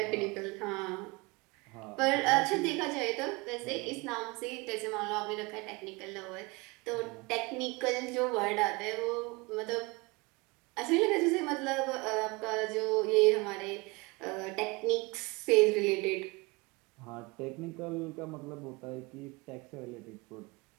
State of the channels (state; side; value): quieter; left; 25.7 dB